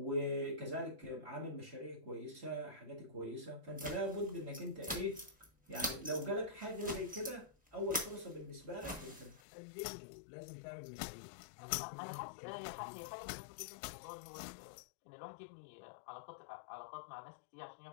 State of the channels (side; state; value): right; drops out; at 9.4 s